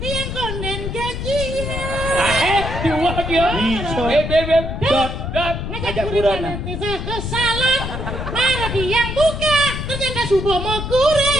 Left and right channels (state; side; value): noise; left; rumble, 5 dB below the sound